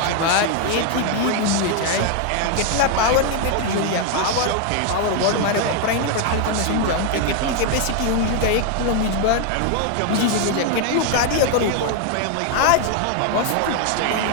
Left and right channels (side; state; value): both; different; correlation 0.00